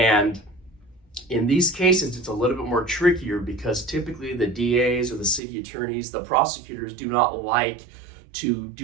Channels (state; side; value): drops out; left; at 5.4 s